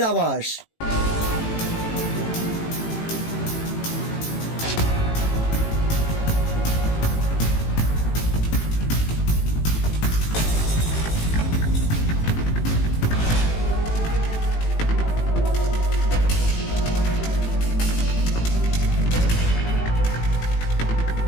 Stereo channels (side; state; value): right; late; 18 ms